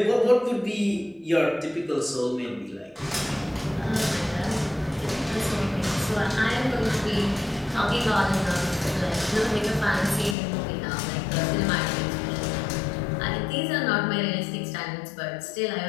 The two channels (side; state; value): right; drops out; at 10.4 s